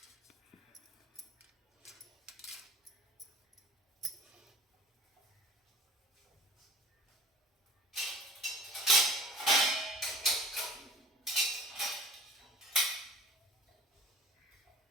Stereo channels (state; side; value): normal; both; correlation 0.45